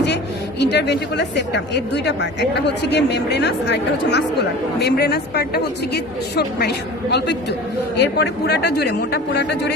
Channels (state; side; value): normal; both; correlation 0.39